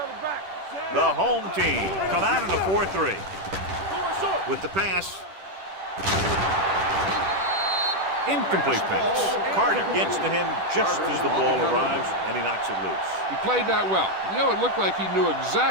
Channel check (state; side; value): late; left; 10 ms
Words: back. The home team come out in a 4-3. With the pass. Incomplete pass. Carter gets to him just as the ball arrives, and he knocks it loose. He played that well. You know, it looked like he knew